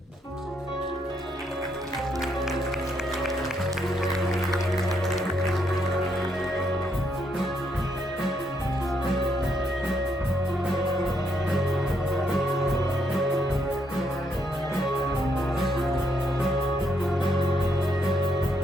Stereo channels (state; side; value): normal; both; correlation 0.75